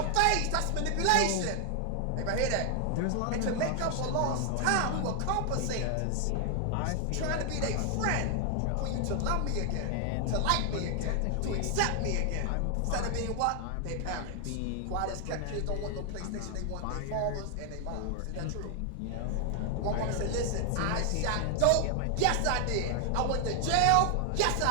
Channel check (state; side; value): different; both; correlation 0.00